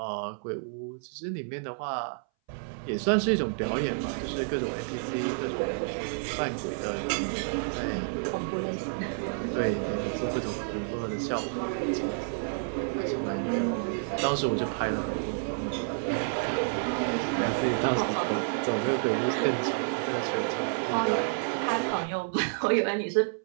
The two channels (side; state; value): left; silent; 58 dB below the other